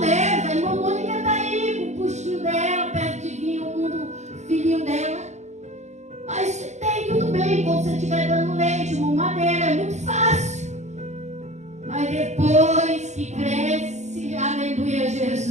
irmã Mônica está aí com o puxinho dela, perto de vir o filhinho dela. Mas tem tudo bem, quando você estiver dando leite, mamadeira, é muito fácil. Mas depois que cresce, aleluia,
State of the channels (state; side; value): late; left; 0.33 ms